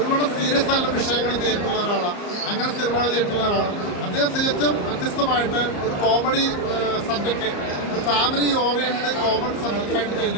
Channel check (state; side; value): late; right; 34 ms